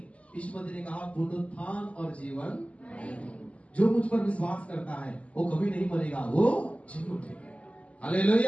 यीशु मसीह ने कहा पुनरुत्थान और जीवन जो मुझ पर विश्वास करता है वो कभी नहीं मरेगा, वो जी उठेगा।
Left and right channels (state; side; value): late; right; 0.065 ms